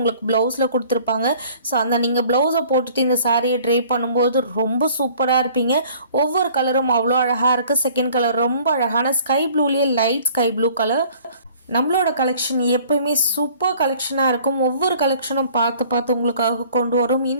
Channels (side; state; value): both; inverted; correlation -0.53